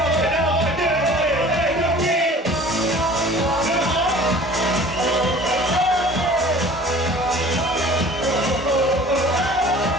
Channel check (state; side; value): normal; both; correlation 0.46